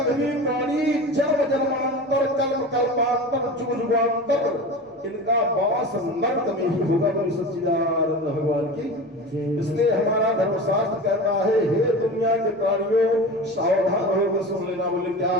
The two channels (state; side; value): normal; both; correlation 0.31